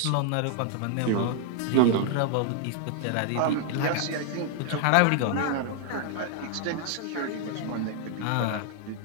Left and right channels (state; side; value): different; both; correlation 0.00